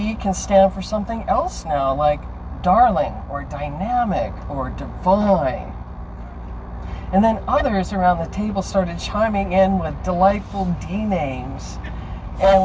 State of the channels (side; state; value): both; identical; correlation 1.00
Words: can stand for something else now, like darling or dynamic or divine. And then others around the table started chiming in with delightful D names, and